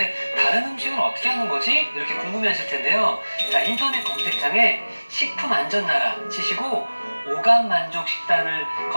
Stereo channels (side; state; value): both; inverted; correlation -1.00